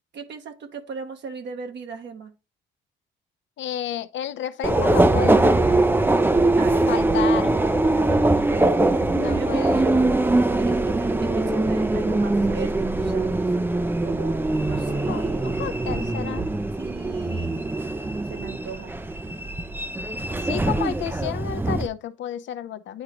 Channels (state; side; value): normal; both; correlation 0.84